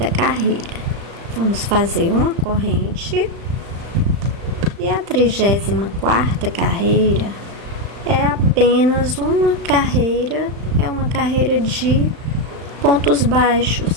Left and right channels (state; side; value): late; left; 35 ms